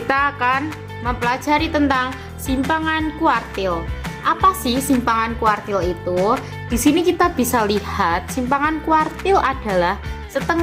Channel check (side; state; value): both; identical; correlation 1.00